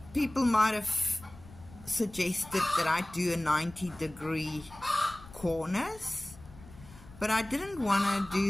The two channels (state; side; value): noise; left; rumble, 20 dB below the sound